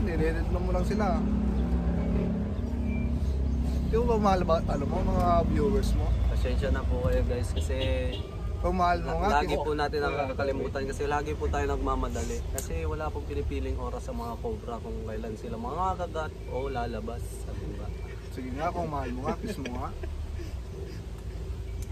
Nire-edit mo lang sila. Di mo ba mahal ba, alam mo, mga viewers mo? Pasensya na po kayo guys kasi Kung mahal mo nga, lagi po natin nakakalimutan kasi lagi po tayo nagmamadali. Kasi wala pong pinipiling oras sa mga cobra kung kailan sila mga kagat o lalabas. Sabi ba? sige nga, kung mahal mo nga, kiss mo nga.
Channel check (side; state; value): both; identical; correlation 1.00